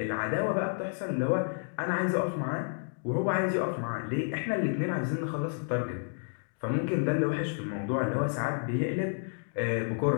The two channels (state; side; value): silent; right; digital silence